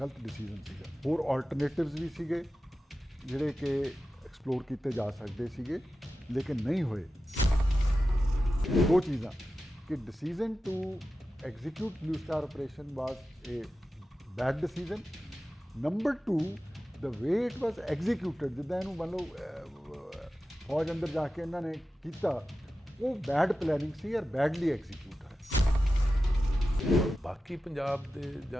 ਡਿਸੀਜਨ ਸੀਗਾ। ਹੋਰ ਆਲਟਰਨੇਟਿਵਸ ਵੀ ਸੀਗੇ ਜਿਹੜੇ ਕਿ ਐਕਸਪਲੋਰ ਕੀਤੇ ਜਾ ਸਕਦੇ ਸੀਗੇ ਲੇਕਿਨ ਨਹੀਂ ਹੋਏ। ਦੋ ਚੀਜ਼ਾਂ ਕਿ decision to execute Blue Star operation was a bad decision. Number 2 the way it was executed, ਜਿੱਦਾਂ ਇਹਨੂੰ ਮੰਨ ਲਓ ਫੌਜ ਅੰਦਰ ਜਾ ਕੇ ਇਹਨਾਂ ਨੇ ਕੀਤਾ, ਉਹ ਬੈਡ ਪਲੈਨਿੰਗ ਸੀ ਔਰ ਬੈਡਲੀ ਐਗਜ਼ੀਕਿਊਟ ਹੈ। ਬਾਕੀ ਪੰਜਾਬ ਦੇ ਜਾਂ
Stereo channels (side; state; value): both; normal; correlation 0.93